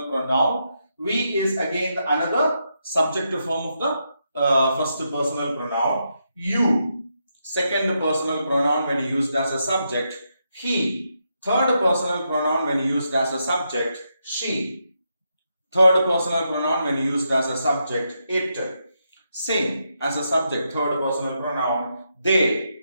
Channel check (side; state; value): both; inverted; correlation -0.82